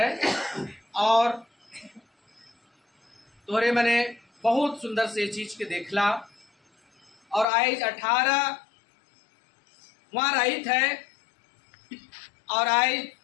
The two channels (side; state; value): right; drops out; at 7.5 s